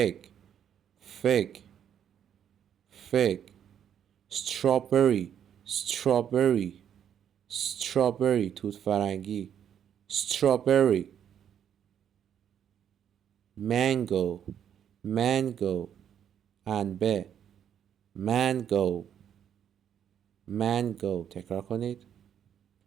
fig, fig. strawberry, strawberry, strawberry. توت فرنگی. strawberry. mango, mango. انبه. mango, mango. تکرار کنید.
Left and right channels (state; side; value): quieter; left; 9.1 dB